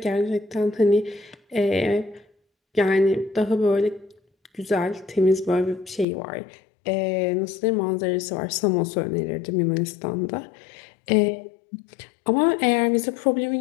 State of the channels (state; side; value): drops out; right; at 6.1 s